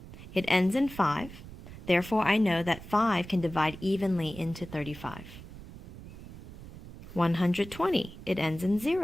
It ends in 5. Therefore, I know that 5 can divide evenly into 35. 120. It ends in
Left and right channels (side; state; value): right; noise; rumble, 15 dB below the sound